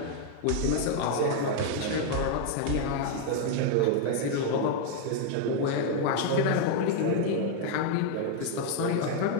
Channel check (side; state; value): both; different; correlation 0.00